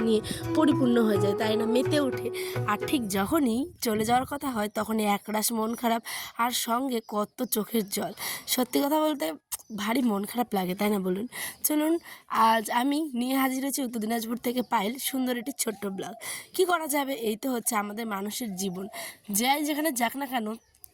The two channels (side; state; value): both; identical; correlation 1.00